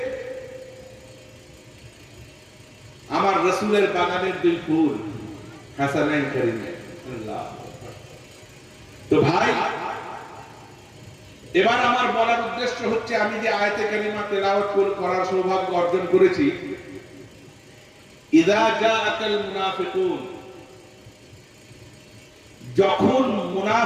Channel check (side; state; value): both; identical; correlation 1.00